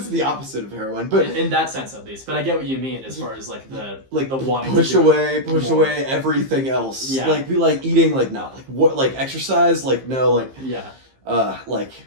the opposite of heroin, but in that sense at least. But I get what you mean as far as like the wanting push to away everything else. Yeah. Like be like eating, like not like what, like exercise, like no, like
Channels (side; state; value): left; late; 15 ms